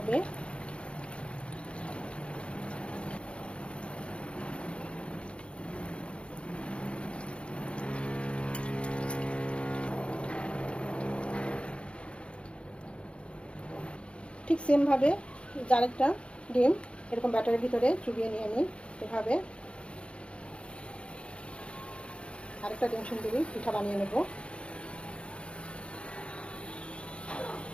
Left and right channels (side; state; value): right; late; 0.058 ms